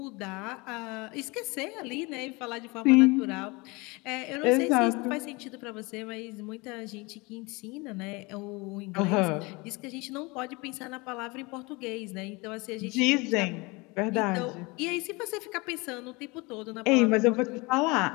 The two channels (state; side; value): quieter; right; 25.7 dB